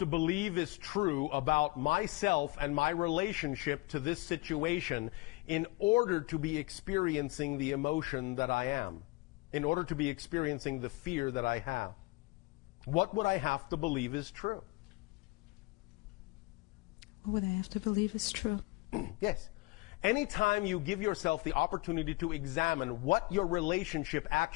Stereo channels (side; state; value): right; quieter; 23.6 dB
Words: believe is true about myself and my relationship to this situation in order to be experiencing the emotion that I am, in order to be experiencing the fear that I have? What would I have to believe is true? What would I have to believe is true? Yes. Anytime you give yourself the opportunity to examine what your relationship